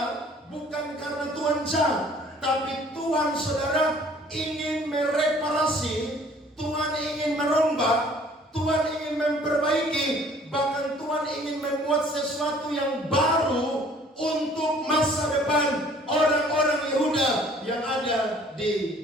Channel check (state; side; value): normal; both; correlation 0.55